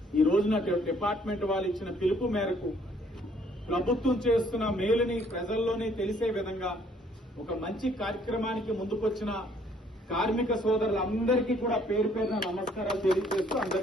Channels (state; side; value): normal; both; correlation 0.63